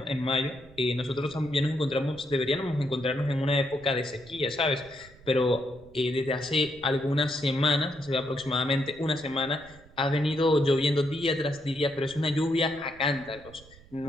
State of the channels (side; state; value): right; noise; rumble, 23 dB below the sound